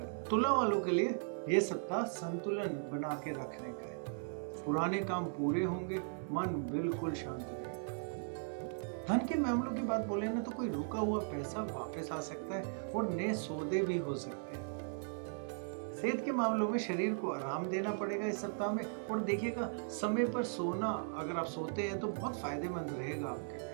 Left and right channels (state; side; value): silent; left; digital silence